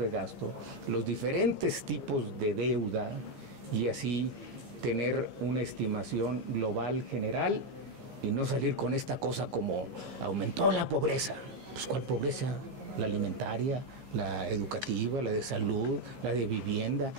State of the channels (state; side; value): late; left; 15 ms